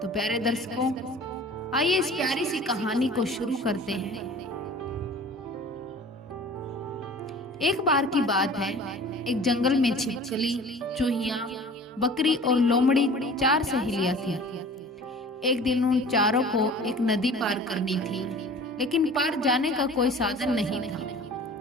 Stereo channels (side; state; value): both; normal; correlation 0.44